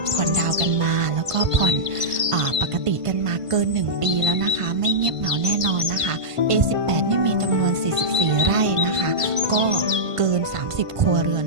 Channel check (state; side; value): late; left; 1.5 ms